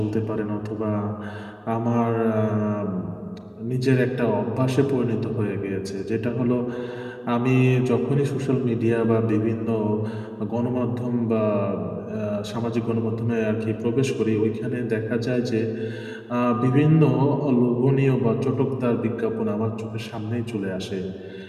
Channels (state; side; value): identical; both; correlation 1.00